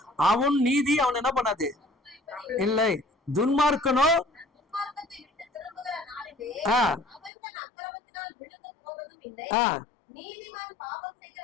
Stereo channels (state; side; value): drops out; right; at 7.3 s